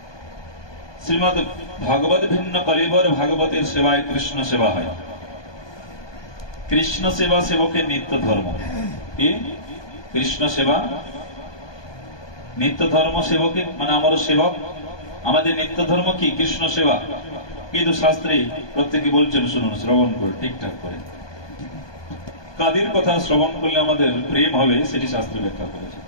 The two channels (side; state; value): right; late; 1.2 ms